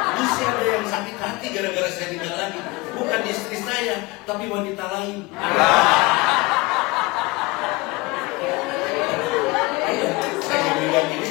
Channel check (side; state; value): right; quieter; 23.1 dB